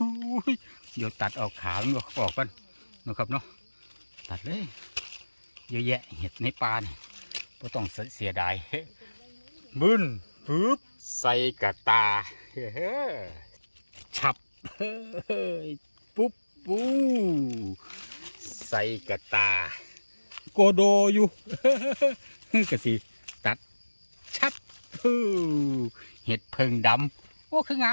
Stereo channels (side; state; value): both; inverted; correlation -1.00